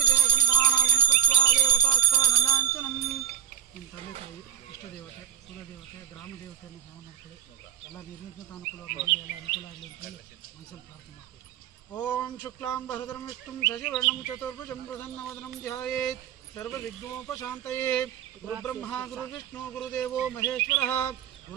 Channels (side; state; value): left; quieter; 9.8 dB